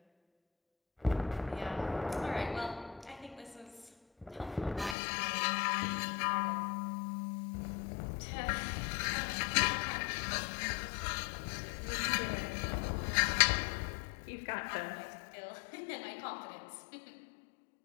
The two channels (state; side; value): drops out; right; at 5.0 s